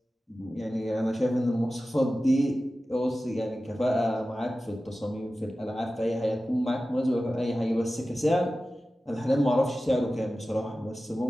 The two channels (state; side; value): normal; both; correlation 0.95